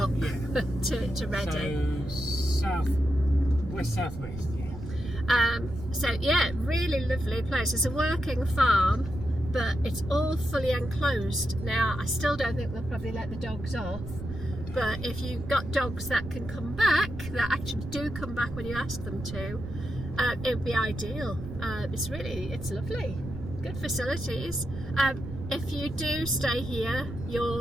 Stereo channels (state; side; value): noise; right; rumble, 9 dB below the sound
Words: Yeah. to Reading. So southwest, yeah. So yeah, really lovely place. It's a working farm, but it's all fully enclosed. Now, I still don't think they'll probably let the dogs off, but if you've got dogs that can come back, that actually do come back when you ask them to, it would be ideal. It's lovely. Good facilities. If you do stay here,